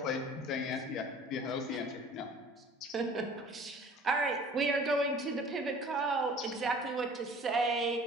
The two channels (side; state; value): both; normal; correlation 0.48